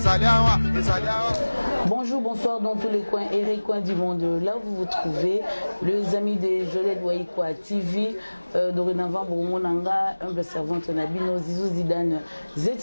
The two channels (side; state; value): both; inverted; correlation -1.00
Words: Bonjour, bonsoir dans tous les coins et recoins du monde. Là où vous vous trouvez, les amis de Jolette Waïkwa TV, dorénavant, Bourmonanga, humble servante Nabino, Zizou Zidane,